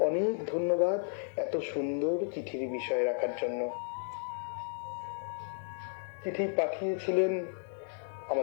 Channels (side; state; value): right; silent; digital silence